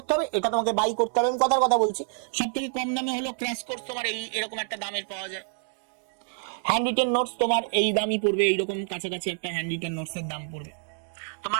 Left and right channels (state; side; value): silent; left; 60 dB below the other